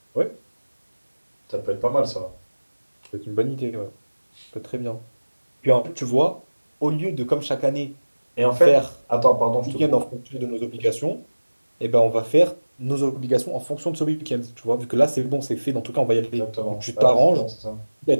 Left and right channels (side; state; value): both; inverted; correlation -1.00